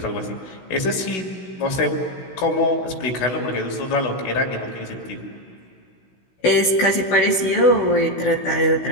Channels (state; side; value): late; right; 16 ms